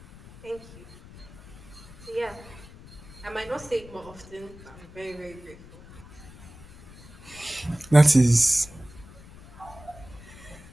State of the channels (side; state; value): left; noise; rumble, 19 dB below the sound